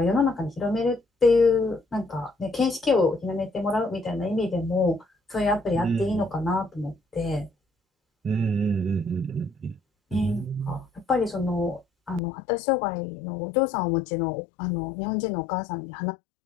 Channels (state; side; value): drops out; right; at 12.2 s